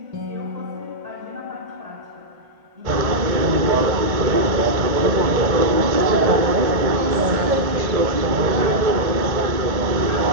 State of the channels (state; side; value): late; left; 1.7 ms